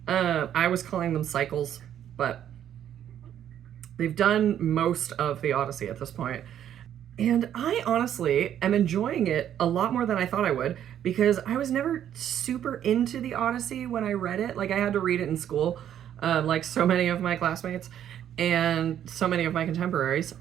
I was calling them cycles, but they've done most of the Odyssey at this point. And I honestly am enjoying it a lot more than I thought I would, because I was never super into the Odyssey when I read it. Like, I had to read it in school, like so many of my classmates and so many of my contemporaries.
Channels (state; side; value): quieter; left; 10.3 dB